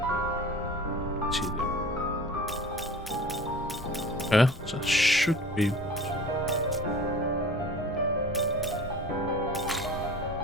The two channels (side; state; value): both; normal; correlation 0.41